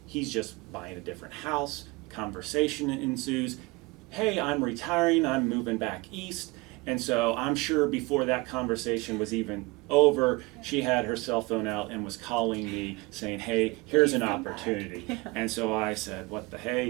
he's just buying a different house. Conversation ensues. Hey, I'm retiring, I'm moving back east. And so I'm sure before that conversation was even over, she had her cell phone out and was calling me saying, hey, here's an opportunity. And so I said, what the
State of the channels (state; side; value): quieter; left; 24.3 dB